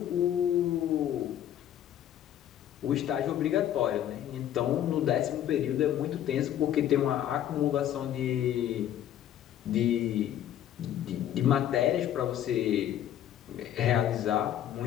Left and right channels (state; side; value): quieter; right; 11.1 dB